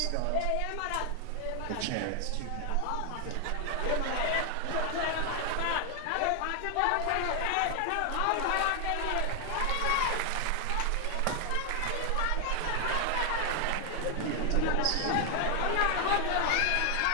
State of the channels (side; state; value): both; different; correlation 0.00